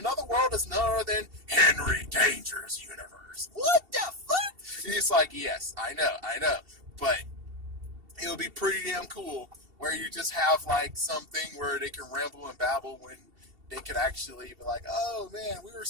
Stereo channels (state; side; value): late; left; 2.7 ms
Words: world is none other than Henry Danger's universe. What the fuck? And he's like, yes, I know. But it'll be pretty damn cool where you just have like something where they can ramble and babble when they could actually be like, oh man, we were